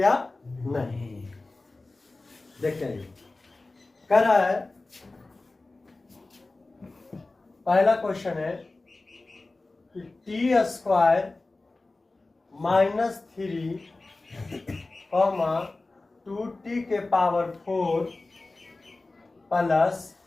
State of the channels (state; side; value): quieter; right; 3.2 dB